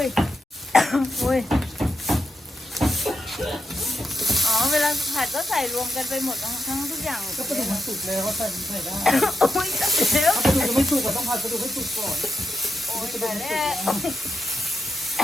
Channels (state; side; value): normal; both; correlation 0.83